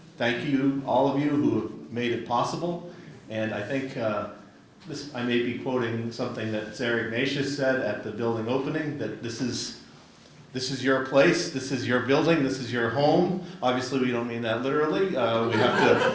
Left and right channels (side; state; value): both; identical; correlation 1.00